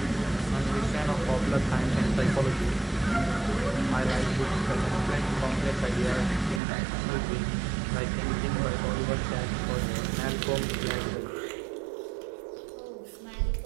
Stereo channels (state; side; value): drops out; left; at 6.6 s